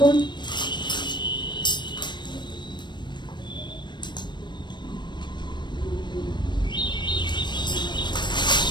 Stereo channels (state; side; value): late; right; 0.22 ms